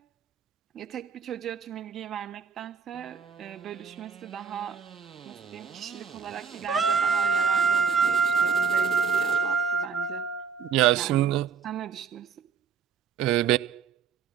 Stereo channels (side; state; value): left; quieter; 6.6 dB